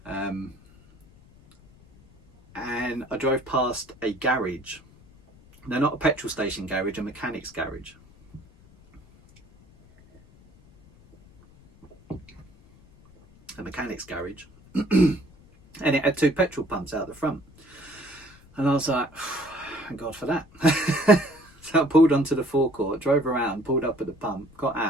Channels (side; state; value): left; noise; rumble, 26 dB below the sound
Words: And I drove past a garage. They're not a petrol station garage, a mechanic's garage. A mechanic's garage. And it had 2 petrol pumps out the front. And I was like, thank God for that. So I pulled onto the forecourt, drove around, pulled up at the pump, got